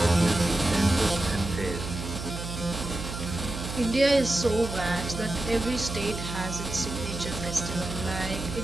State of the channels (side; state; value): right; noise; hum, 7 dB below the sound